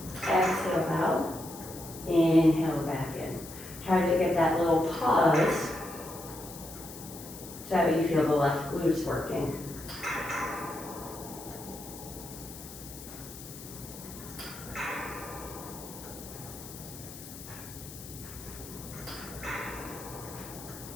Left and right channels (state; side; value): noise; left; hiss, 14 dB below the sound